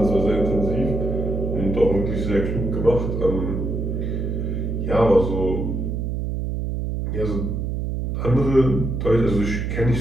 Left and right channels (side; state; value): right; noise; hum, 2 dB below the sound